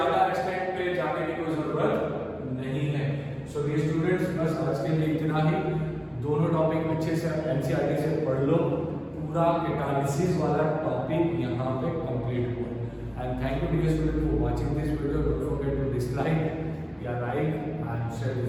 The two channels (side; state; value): both; identical; correlation 1.00